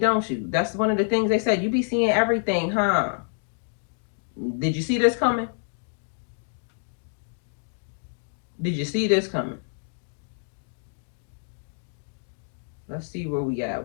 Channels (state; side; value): silent; right; digital silence